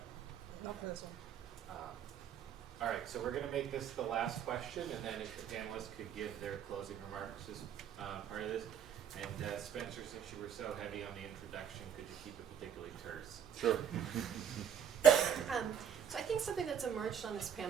Not for this one. All right, so we're going to make this the last question, and then if the panelists could give their closing remarks as part of this. And Spencer, since you were so heavy on the introduction, could you keep it particularly terse? Sure. So I think something that's emerged on this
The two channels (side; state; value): left; quieter; 8.4 dB